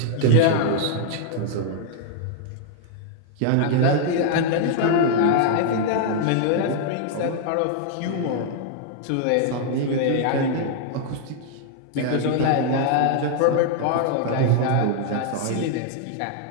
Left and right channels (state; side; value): different; both; correlation -0.01